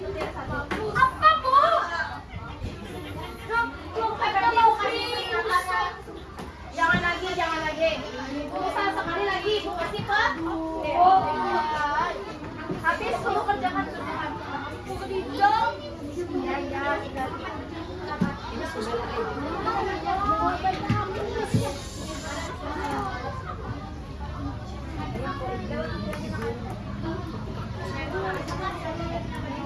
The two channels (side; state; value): both; identical; correlation 1.00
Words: Ibu kasih Pak. Habis kamu kerjakan kerjaan. Ibu kedijong. Iya.